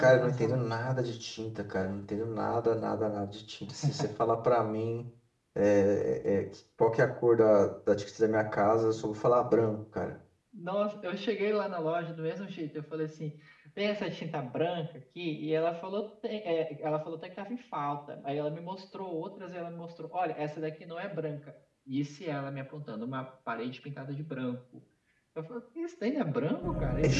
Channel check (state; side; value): identical; both; correlation 1.00